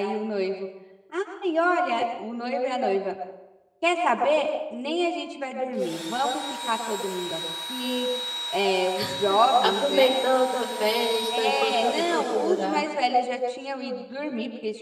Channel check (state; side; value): identical; both; correlation 1.00